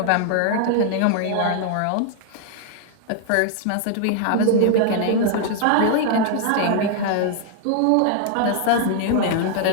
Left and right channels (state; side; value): different; both; correlation 0.00